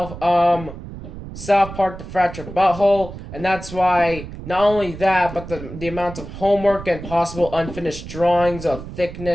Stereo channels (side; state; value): right; noise; rumble, 12 dB below the sound